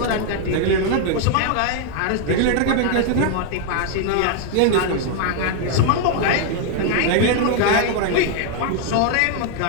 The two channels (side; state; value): both; different; correlation 0.00